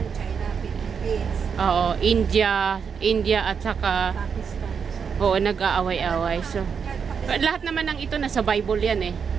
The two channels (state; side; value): quieter; left; 6.5 dB